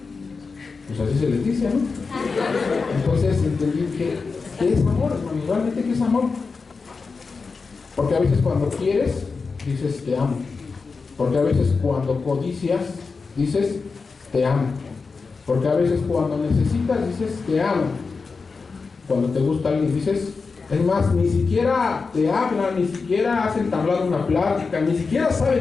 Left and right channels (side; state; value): right; quieter; 4.6 dB